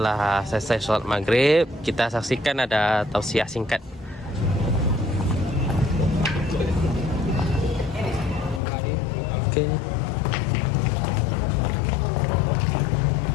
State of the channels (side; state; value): right; drops out; at 8.6 s